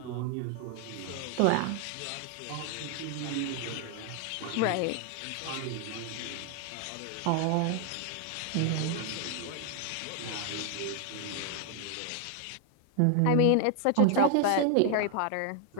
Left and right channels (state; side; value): different; both; correlation 0.00